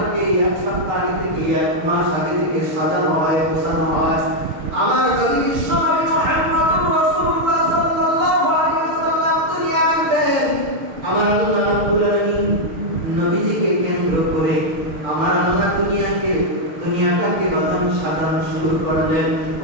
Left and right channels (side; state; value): left; late; 6.6 ms